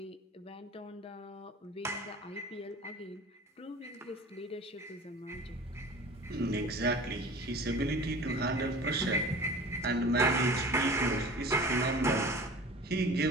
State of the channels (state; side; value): normal; both; correlation 0.41